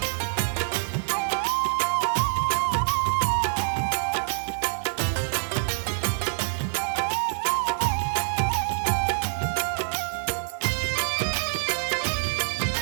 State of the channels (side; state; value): left; silent; 61 dB below the other